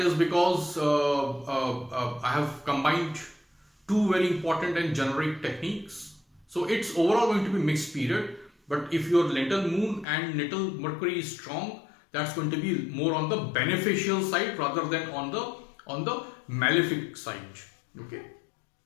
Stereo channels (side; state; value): right; drops out; at 10.1 s